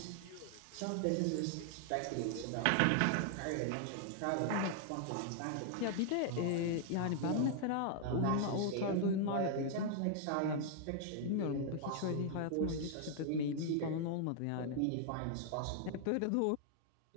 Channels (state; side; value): different; both; correlation 0.00